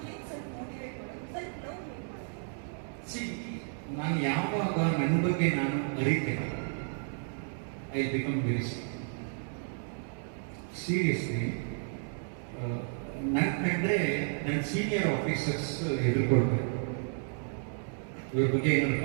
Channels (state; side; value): silent; left; 56 dB below the other